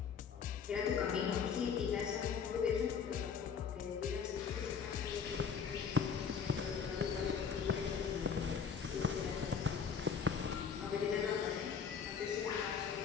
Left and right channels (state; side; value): quieter; right; 6.6 dB